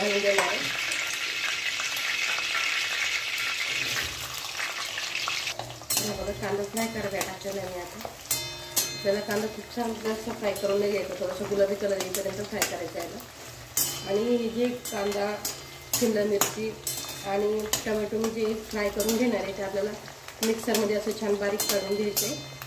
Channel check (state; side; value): identical; both; correlation 1.00